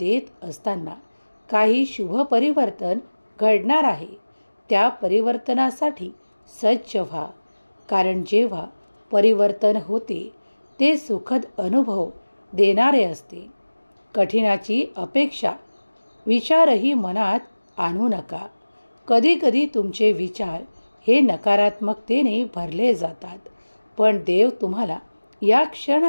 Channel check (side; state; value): both; inverted; correlation -1.00